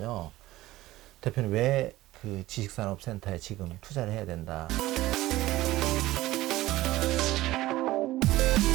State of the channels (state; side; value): quieter; left; 16.8 dB